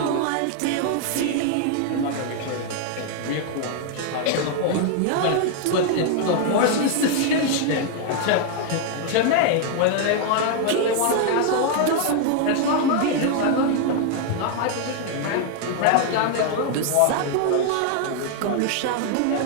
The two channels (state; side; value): different; both; correlation 0.00